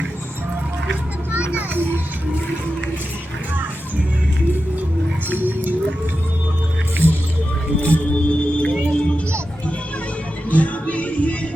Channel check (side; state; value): both; normal; correlation 0.91